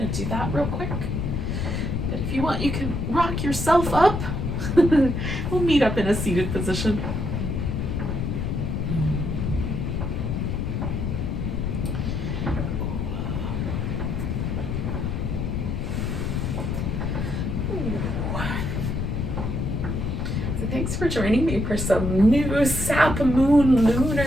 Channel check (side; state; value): left; noise; rumble, 1 dB below the sound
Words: to do that real quick. But if you want, you can rock yourself up. We'll meet up in a seated position. Thanks for joining me for some new Sap Moon